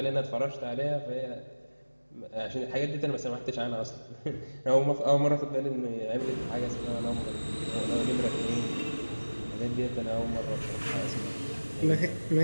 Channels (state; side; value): inverted; both; correlation -1.00